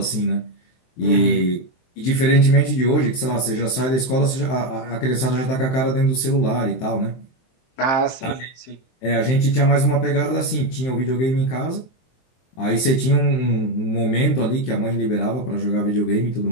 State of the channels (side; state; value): right; late; 23 ms